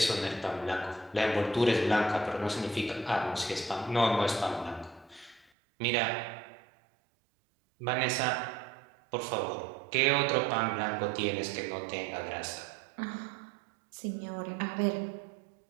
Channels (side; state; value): left; drops out; at 5.5 s